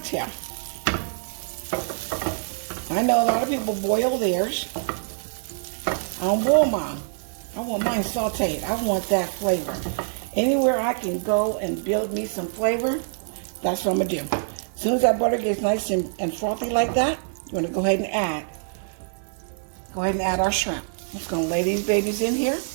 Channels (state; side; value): silent; left; 62 dB below the other